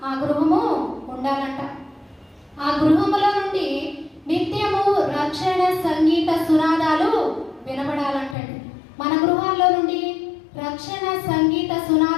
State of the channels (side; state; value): right; drops out; at 8.3 s